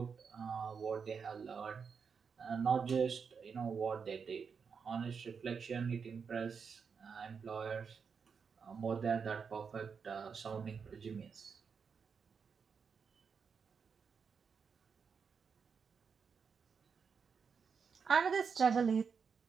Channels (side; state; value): left; quieter; 6.0 dB